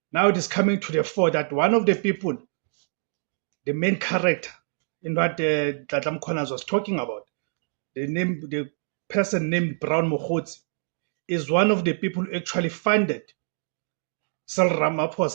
now it is coming to the fore that one of the people, the main character in what Nhlanhla Mkhwanazi was talking about, the person named Brown Mokgotsi, is one of the people who actually funded Cyril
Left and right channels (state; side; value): silent; left; digital silence